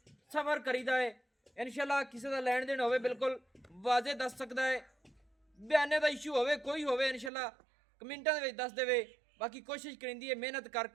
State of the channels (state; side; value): drops out; left; at 7.3 s